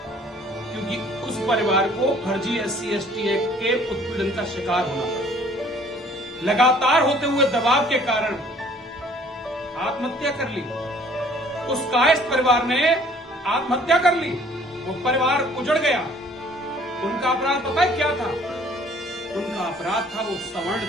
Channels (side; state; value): both; normal; correlation 0.56